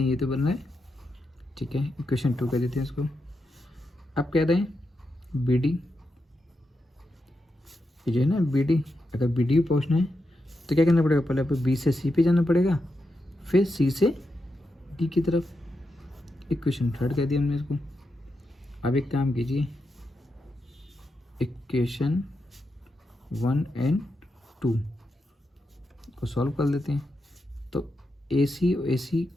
ये तो बन रहा है, ठीक है। इक्वेशन 2 कह देते हैं इसको। अब कह रहे हैं बी डी, ये जो है ना बी डी, अगर बी डी पहुँचना है तो क्या करना पड़ेगा, पहले आपको बी से सी पे जाना पड़ेगा, फिर सी से डी की तरफ। इक्वेशन 3 कह दिया हमने इसको। अब एक काम कीजिए, इक्वेशन 1 एंड 2 को सॉल्व कर लेते हैं। तो ए सी और ए सी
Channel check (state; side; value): normal; both; correlation 0.86